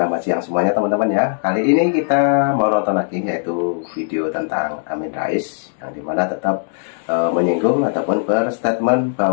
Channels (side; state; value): right; silent; digital silence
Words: siang semuanya teman-teman ya. Kali ini kita mau nonton lagi, yaitu video tentang Amin Rais, yang dimana tetap menyinggung ataupun berstatement